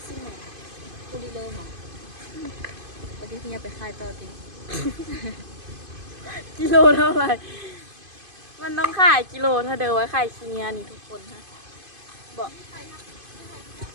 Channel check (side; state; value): left; late; 2.5 ms